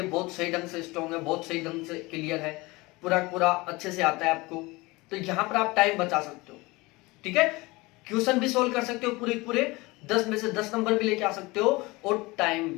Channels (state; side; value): quieter; right; 22.6 dB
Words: बहुत सही ढंग से स्ट्रॉन्ग है, बहुत सही ढंग से क्लियर है, पूरा पूरा अच्छे से आता है आपको, तो यहां पर आप टाइम बचा सकते हो। ठीक है, क्वेश्चन भी सोल्व कर सकते हो, पूरे पूरे 10 में से 10 नंबर भी लेके आ सकते हो और टाइम